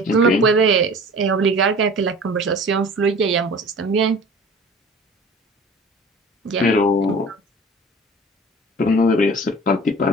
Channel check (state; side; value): normal; both; correlation 0.43